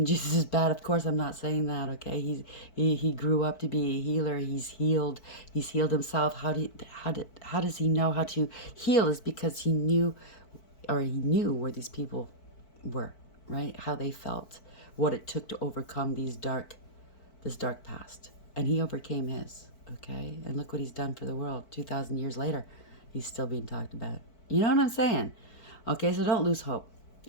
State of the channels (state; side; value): late; right; 4.5 ms